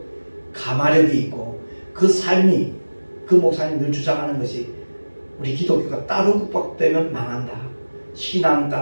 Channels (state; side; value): inverted; both; correlation -1.00